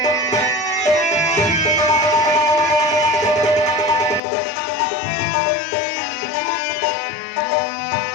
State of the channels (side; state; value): right; drops out; at 4.2 s